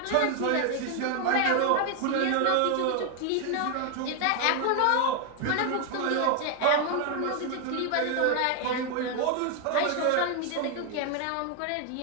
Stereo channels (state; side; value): different; both; correlation 0.01